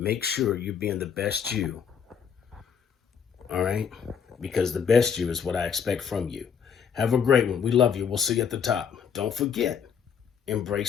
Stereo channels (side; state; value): right; quieter; 7.2 dB